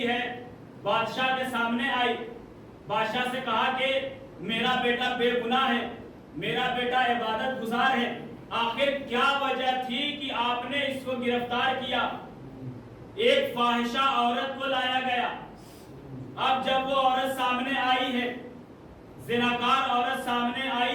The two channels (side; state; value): both; identical; correlation 1.00